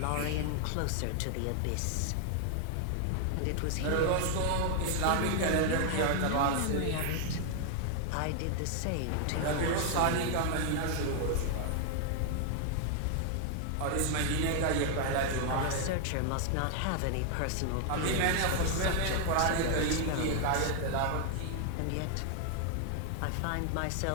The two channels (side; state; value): both; different; correlation 0.00